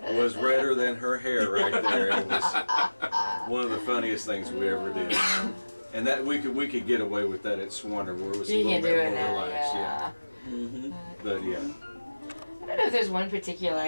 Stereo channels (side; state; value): both; inverted; correlation -1.00